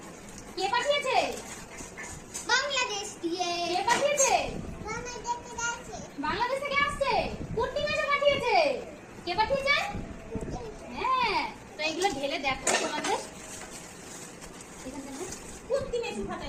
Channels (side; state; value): both; identical; correlation 1.00